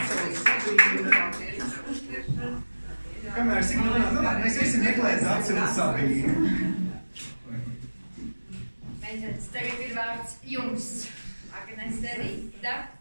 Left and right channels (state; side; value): inverted; both; correlation -1.00